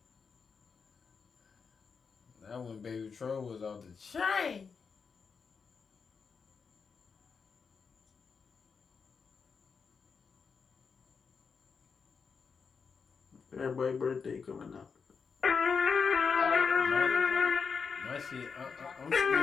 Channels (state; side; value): quieter; right; 5.6 dB